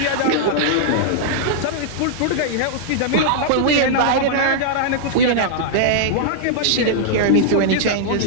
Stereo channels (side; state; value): both; different; correlation -0.01